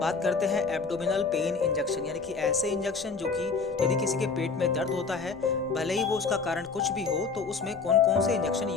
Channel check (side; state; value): right; quieter; 4.8 dB